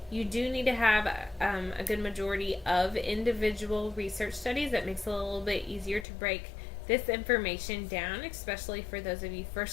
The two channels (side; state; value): right; drops out; at 6.1 s